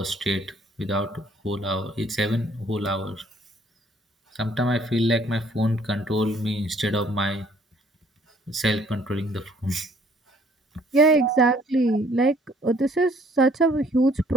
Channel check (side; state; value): both; normal; correlation 0.60